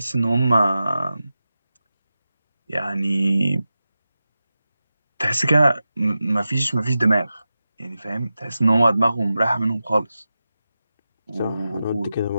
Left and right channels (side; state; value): both; inverted; correlation -0.93